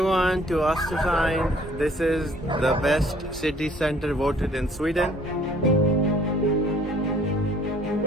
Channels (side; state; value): both; normal; correlation 0.57